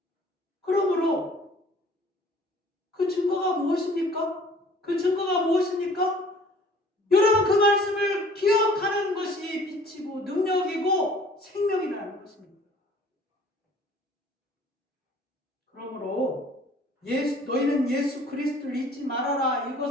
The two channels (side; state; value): both; normal; correlation 0.52